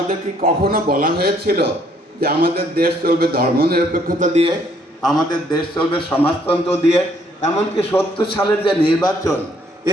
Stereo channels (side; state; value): both; normal; correlation 0.66